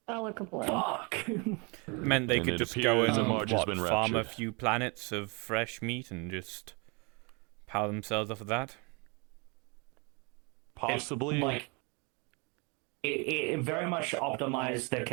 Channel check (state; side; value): quieter; left; 31.1 dB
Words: Meant they And could it just appears go that and Marge has been farm a raptured. few planets of fresh meat and just power themselves off of that? Possibly. It very much optimized their